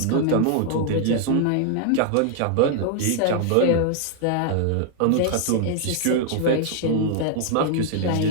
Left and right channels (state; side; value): different; both; correlation 0.00